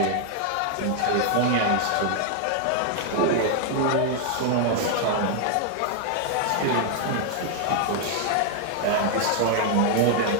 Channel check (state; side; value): different; both; correlation 0.00